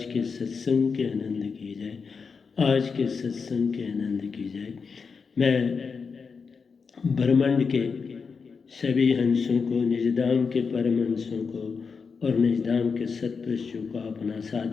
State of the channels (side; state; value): right; quieter; 5.4 dB